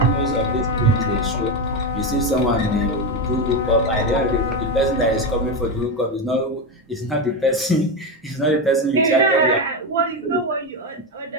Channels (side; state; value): both; normal; correlation 0.13